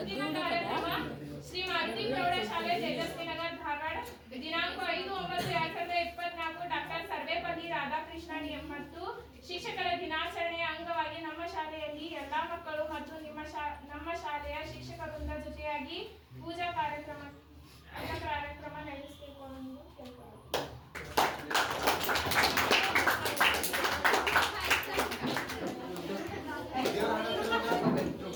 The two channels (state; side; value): identical; both; correlation 1.00